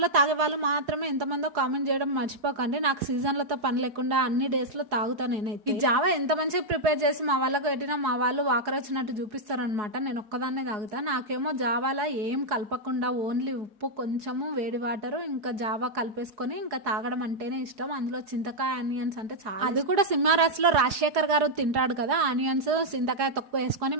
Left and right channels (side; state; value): left; late; 4.8 ms